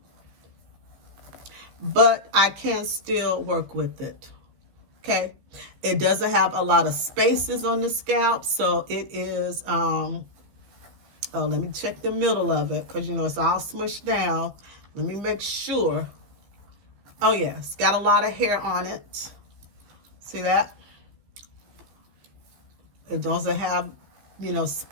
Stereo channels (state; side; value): late; left; 15 ms